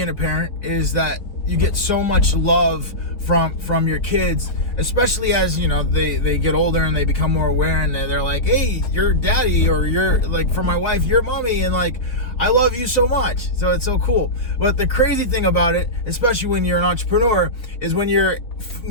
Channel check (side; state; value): right; late; 4.2 ms